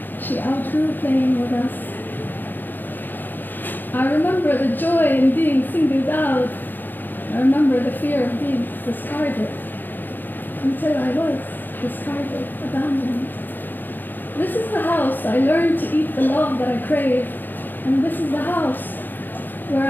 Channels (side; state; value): right; late; 0.091 ms